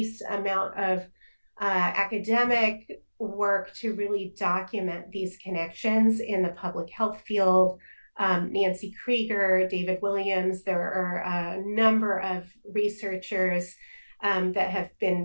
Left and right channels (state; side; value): inverted; both; correlation -1.00